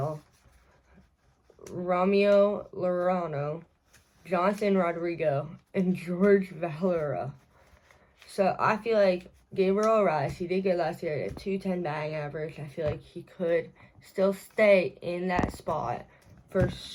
Ramiro Lorano, Jonathan Rodrigo, and George Valera. So I feel like Gabriel Arraez, he did good last year at a 210 batting average. I feel like he could still stay in that spot for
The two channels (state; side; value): identical; both; correlation 1.00